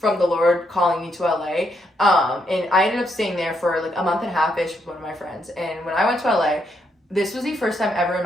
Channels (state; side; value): normal; both; correlation 0.77